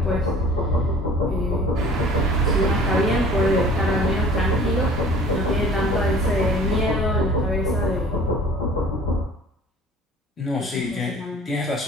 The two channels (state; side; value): normal; both; correlation 0.47